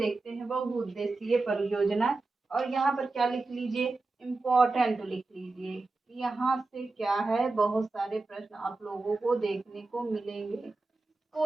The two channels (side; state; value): left; quieter; 3.4 dB